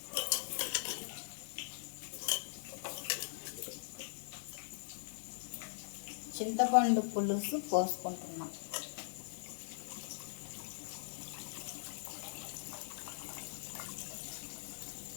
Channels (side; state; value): right; silent; digital silence